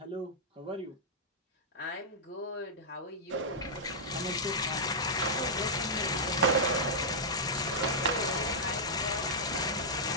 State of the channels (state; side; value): normal; both; correlation -0.09